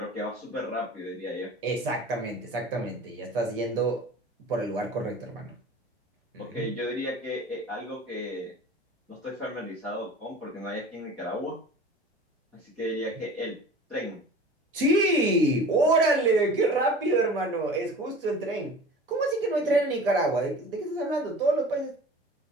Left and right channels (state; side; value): normal; both; correlation 0.40